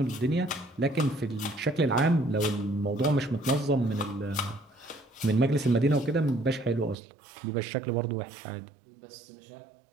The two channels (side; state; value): left; drops out; at 7.0 s